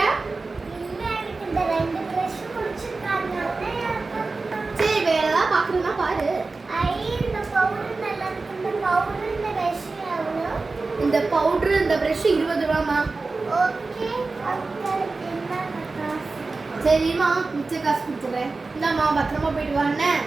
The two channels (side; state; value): left; quieter; 3.8 dB